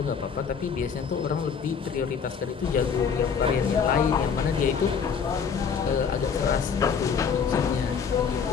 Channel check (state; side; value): quieter; right; 6.4 dB